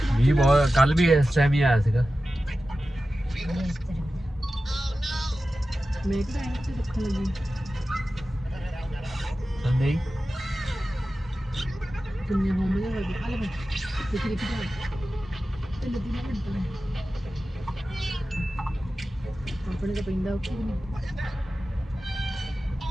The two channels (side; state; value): both; normal; correlation 0.94